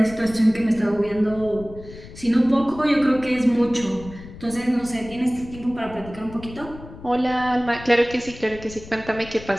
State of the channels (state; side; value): noise; left; rumble, 16 dB below the sound